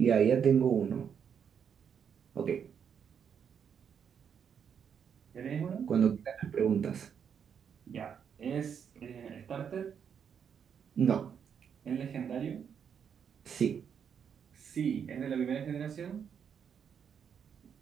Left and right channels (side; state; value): left; quieter; 7.6 dB